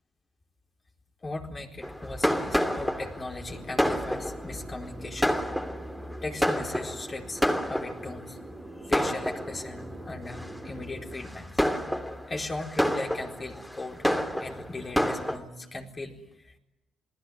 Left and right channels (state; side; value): normal; both; correlation 0.96